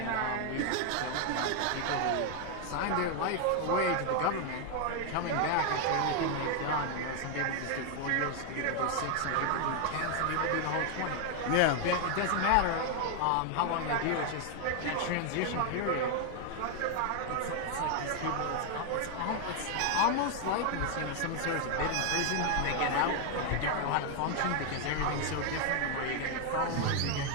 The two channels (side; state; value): both; different; correlation 0.00